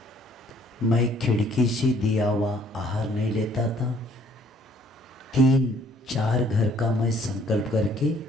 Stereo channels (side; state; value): both; normal; correlation 0.61